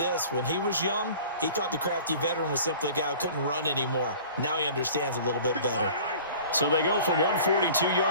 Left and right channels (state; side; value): inverted; both; correlation -0.45